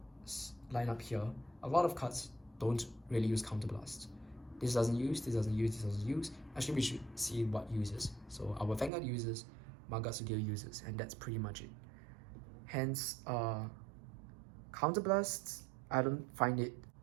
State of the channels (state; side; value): drops out; left; at 8.9 s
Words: lineup here, a lot of cards don't really use counterblasts. This doesn't use, this doesn't use, this doesn't use. Actually, we should see what uses. So our Vanguard uses, Magatsu Gale uses, and that's pretty much it. Hence, counterblasts, I don't find it